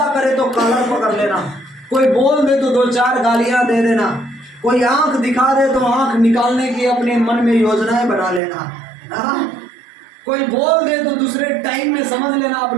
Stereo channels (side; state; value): left; drops out; at 8.4 s